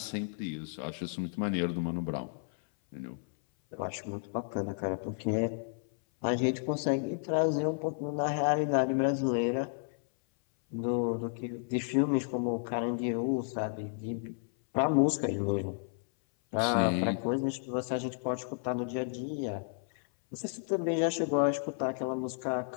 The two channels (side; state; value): right; silent; 56 dB below the other